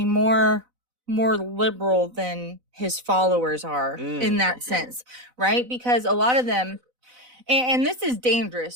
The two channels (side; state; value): left; late; 4.0 ms